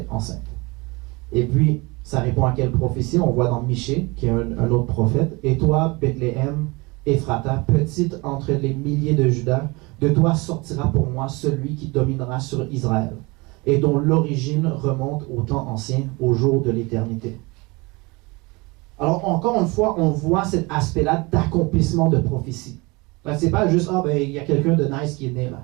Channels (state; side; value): quieter; left; 25.4 dB